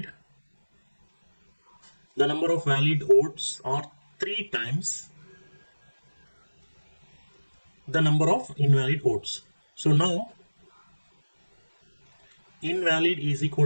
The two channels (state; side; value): inverted; both; correlation -1.00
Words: the number of valid votes are 3 times the number of invalid votes. So now invalid is